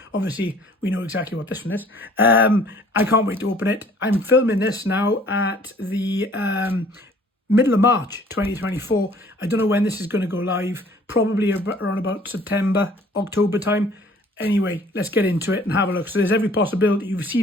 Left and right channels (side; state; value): both; normal; correlation 0.54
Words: Obviously, we know exactly what this one is. I can't wait to open it. I'm filming this now at the middle of March 2024. I don't know when this is going to go live. Probably around about September, October time. Anyway, let's get into it and have a look. So there's every possibility you've